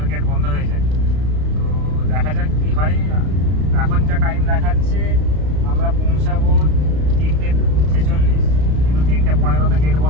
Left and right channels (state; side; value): late; left; 33 ms